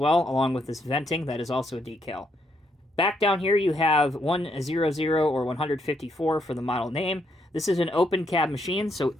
along with this venting. That is also a decal. Back down here you have 100 or 154 for the model name. This is an open cab machine, so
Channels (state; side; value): normal; both; correlation 0.76